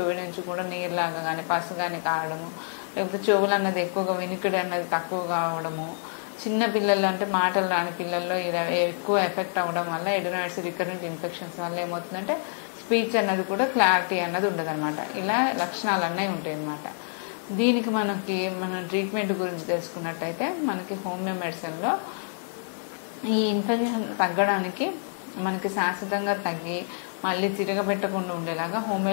నుంచి కూడా నీరులాగా కానీ పసు కానీ కావడము, లేకపోతే చెవులు అన్నది ఎక్కువగా వినికిడి అన్నది తక్కువ కావడము, చిన్న పిల్లలు అంటే మాటలు రాని పిల్లల్లో ఇలా ఎక్కువ ఎఫెక్ట్ అవ్వడం వల్ల ఎడినాయిడ్స్ రికరెంట్ ఇన్ఫెక్షన్స్ వల్ల ఏమవుతుందంటే స్పీచ్ అన్నది కూడా క్లారిటీ అన్నది ఉండదు అనమాట. ఇలా లక్షణాలు అన్నీ ఉంటాయి అన్నమాట. దీనికి మనం ట్రీట్మెంట్ గురించి తెలుసుకున్నట్టయితే మనకి హోమియో మెడిసిన్లో ఈ ఇన్ఫెక్షన్ తగ్గడానికి మనకి శాశ్వతంగా తగ్గి మళ్ళీ తిరగబెట్టకుండా ఉండేలాగా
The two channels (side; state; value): right; silent; digital silence